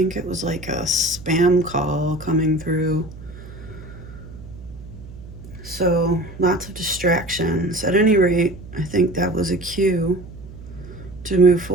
it was like a spam call coming through. So, lots of distractions. At any rate, I think that was a cue to move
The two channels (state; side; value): noise; right; hum, 15 dB below the sound